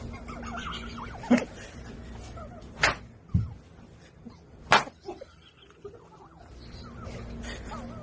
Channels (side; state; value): both; identical; correlation 1.00